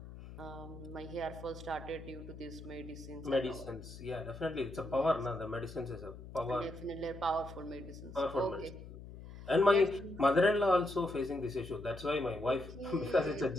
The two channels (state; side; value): noise; left; hum, 14 dB below the sound